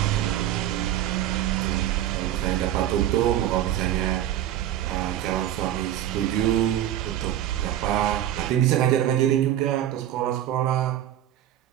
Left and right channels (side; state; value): left; quieter; 12.0 dB